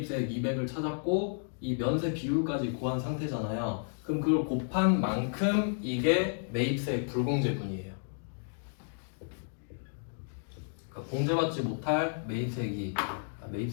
200을 찾았고 이 면세 비율까지 구한 상태잖아요. 그럼 그걸 곱한 만큼 이게 매입세액 불공제분이에요. 그러니까 공제받지 못할 매입세액이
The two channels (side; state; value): right; silent; digital silence